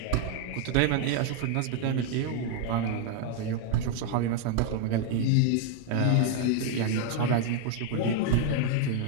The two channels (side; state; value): both; different; correlation 0.00